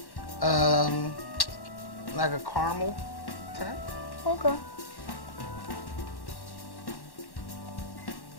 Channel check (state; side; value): late; right; 1.1 ms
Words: like a caramel tint. Okay.